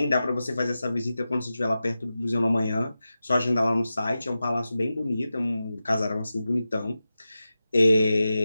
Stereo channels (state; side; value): inverted; both; correlation -0.93